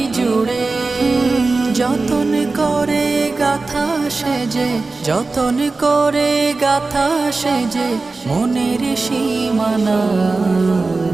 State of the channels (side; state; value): left; quieter; 3.7 dB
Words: জুড়ে। যতন করে গাথা সেজে, যতন করে গাথা সেজে মনের সীমানা।